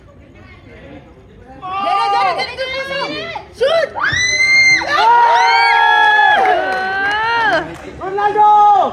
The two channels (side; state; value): both; identical; correlation 1.00